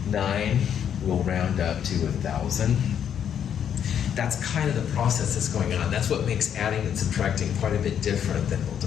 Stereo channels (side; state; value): right; quieter; 8.8 dB